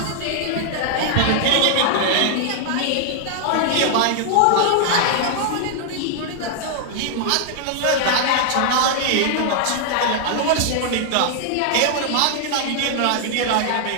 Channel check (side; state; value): both; different; correlation 0.00